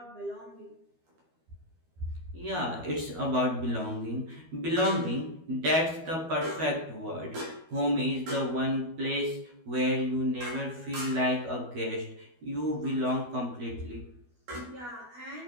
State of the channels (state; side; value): late; left; 12 ms